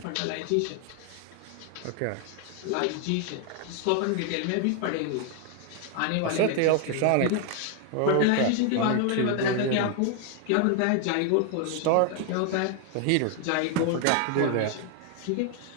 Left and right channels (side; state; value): both; different; correlation 0.00